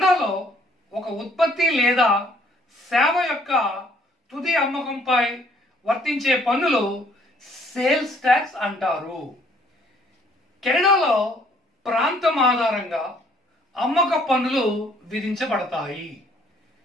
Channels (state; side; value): normal; both; correlation 0.62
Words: ఒక ఉత్పత్తి లేదా సేవ యొక్క తుది అమ్మకంపై వర్తించే పన్నులు సేల్స్ ట్యాక్స్ అంటారు. కెనడాలో ప్రాంతం ఆధారంగా అమ్మక పన్నులు విధించబడతాయి.